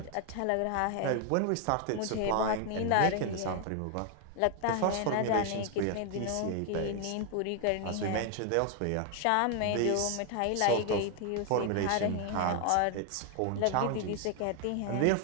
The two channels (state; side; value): different; both; correlation 0.00